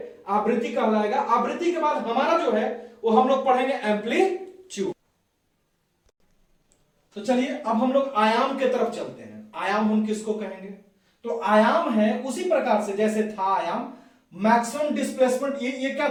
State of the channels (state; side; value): identical; both; correlation 1.00